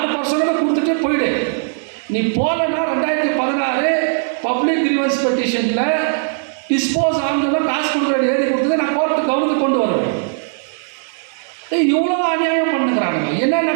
கொடுத்துட்டு போயிடு. நீ போலன்னா 2016 பப்ளிக் கிரீவன்ஸ் பெட்டிஷனில் டிஸ்போஸ் ஆகுதுன்னா காசு கொடுக்குற எழுதி கொடுத்தது நான் கோர்ட்டு கவனத்துக்கு கொண்டு வருவேன். இவ்வளோ அநியாயம் பண்ணுங்கிறாங்க.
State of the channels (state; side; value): silent; left; digital silence